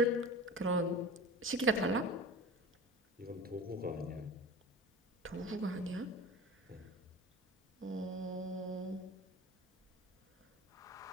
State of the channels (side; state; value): both; normal; correlation 0.36